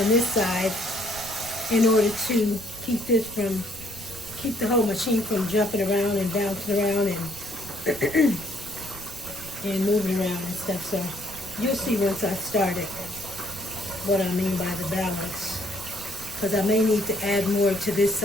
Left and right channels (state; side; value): noise; right; rumble, 16 dB below the sound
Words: this side in order to keep the whole machine from jumping around and bouncing around and and moving around and stuff. So you'll see once I start it what I mean by the balance. Because I may need to add more to this